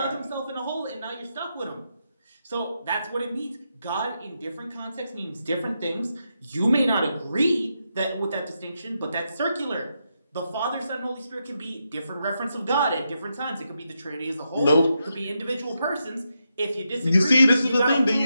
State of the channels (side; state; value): both; inverted; correlation -0.84